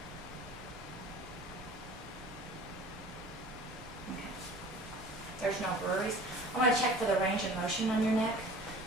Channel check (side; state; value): left; noise; rumble, 18 dB below the sound